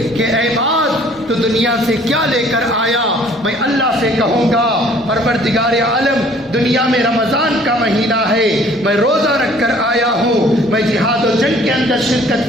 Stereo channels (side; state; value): both; normal; correlation 0.56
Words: کہ اے معاذ تو دنیا سے کیا لے کر آیا، میں اللہ سے کہوں گا پروردگار عالم دنیا میں رمضان کا مہینہ ہے، میں روزہ رکھ کر آیا ہوں، میں جہاد و جنگ کے اندر شرکت